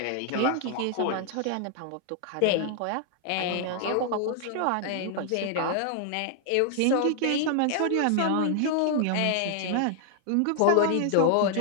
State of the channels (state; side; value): different; both; correlation 0.00